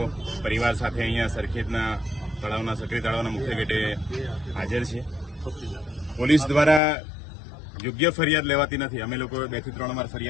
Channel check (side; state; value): right; drops out; at 6.8 s